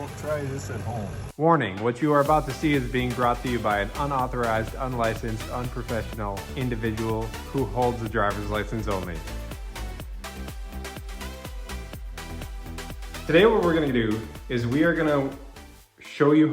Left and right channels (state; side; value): identical; both; correlation 1.00